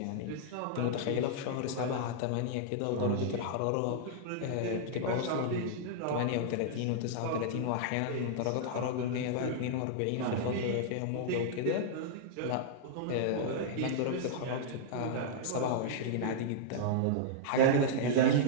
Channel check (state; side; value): different; both; correlation -0.01